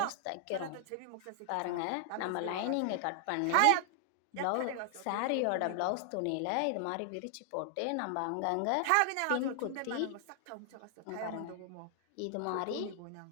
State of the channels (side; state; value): both; different; correlation 0.00